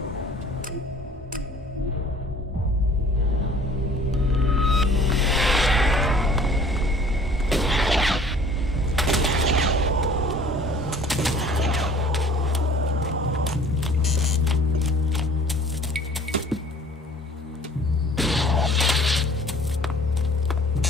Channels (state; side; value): normal; both; correlation 0.52